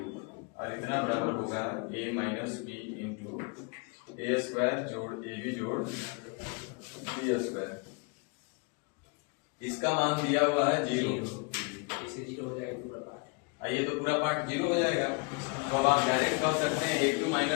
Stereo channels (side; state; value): right; quieter; 32.0 dB